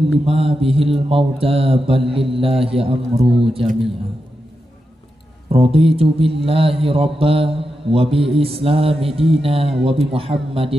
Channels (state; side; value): normal; both; correlation 0.88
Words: bihil mauta bal lillahi amru jami'a. Raditu billahi rabba wa bi islami dina wa bi